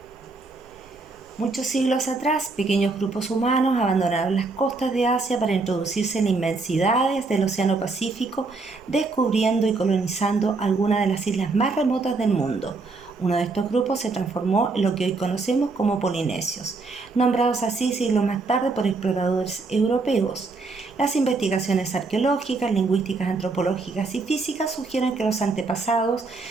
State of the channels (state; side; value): quieter; left; 3.8 dB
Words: muchos siglos atrás, pequeños grupos humanos abandonaron las costas de Asia para introducirse en inmensidades del Océano Pacífico, descubriendo y colonizando algunas de las islas más remotas del mundo. Uno de estos grupos se transformó en lo que hoy conocemos como polinesios, nombrados así siglos más tarde por exploradores europeos. Las investigaciones arqueológicas, lingüísticas, antropológicas y físicas sugieren que los antepasados